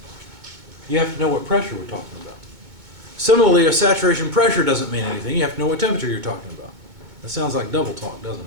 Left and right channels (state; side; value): late; left; 2.2 ms